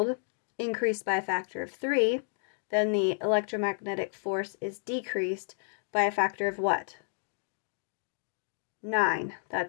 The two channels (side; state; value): right; silent; digital silence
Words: increased by a factor of 3, then the electromagnetic force is decreased by a factor of what? 9.